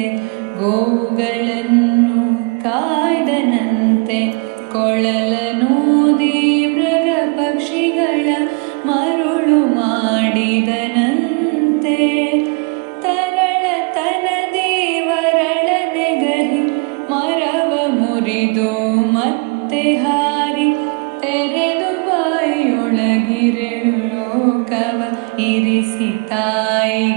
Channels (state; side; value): quieter; left; 32.8 dB